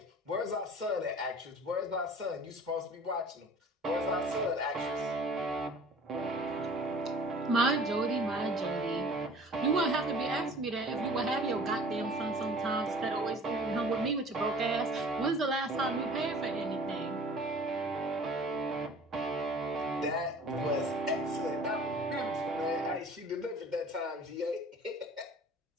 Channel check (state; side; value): normal; both; correlation 0.46